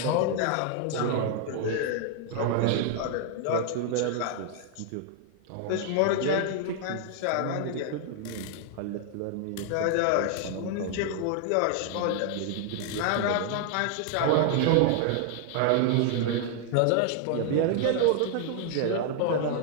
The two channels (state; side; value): different; both; correlation 0.00